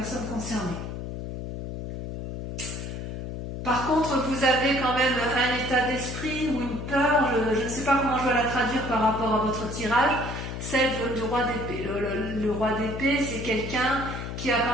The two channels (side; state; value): left; noise; hum, 6 dB below the sound